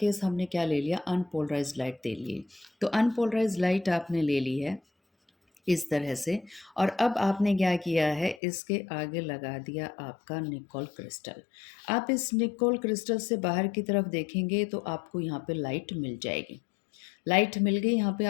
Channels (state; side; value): drops out; right; at 8.4 s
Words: हमने क्या ले लिया, अनपोलराइज्ड लाइट ले लिए। तो अनपोलराइज्ड लाइट आपने ले ली है इस तरह से, और अब आपने क्या किया है, इसके आगे लगा दिया आपका निकोल क्रिस्टल। आप इस निकोल क्रिस्टल से बाहर की तरफ देखेंगे तो आपको यहाँ पे लाइट मिल जाएगी। लाइट मिल गई यहाँ पे